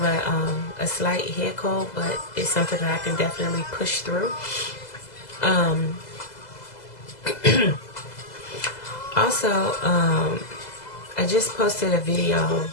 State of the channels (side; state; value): right; late; 2.0 ms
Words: a slight head cold, but it's something that I can definitely push through. Also, I just posted a video